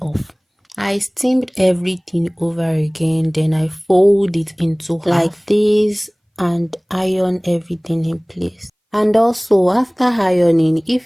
off. I steamed everything over again, then I fold it into half like this and iron everything in place. And also after ironing,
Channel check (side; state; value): both; identical; correlation 1.00